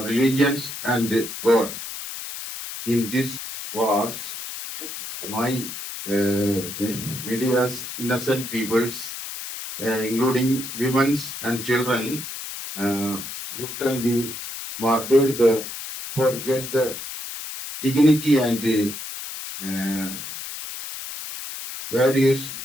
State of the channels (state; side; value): noise; left; hiss, 8 dB below the sound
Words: and God. In this wars, my media's innocent peoples, including women and children, brutally murdered the forget the dignity and values